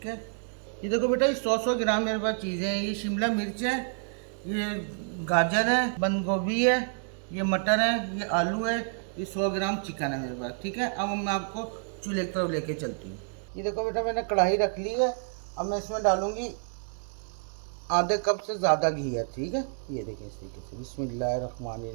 है। ये देखो बेटा, ये 100 ग्राम मेरे पास चीज़ें हैं। ये शिमला मिर्च है, ये गाजर है, बंद गोभी है, ये मटर है, ये आलू है, ये 100 ग्राम चिकन है मेरे पास, ठीक है। अब मैं आपको चूल्हे की तरफ लेके चलती हूँ। ये देखो बेटा, मैंने कढ़ाई रख ली है। अब मैं इसमें डालूँगी आधे कप से ज़्यादा घी है, ठीक है। ये देखें इस तरीके से।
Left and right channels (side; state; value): left; silent; 59 dB below the other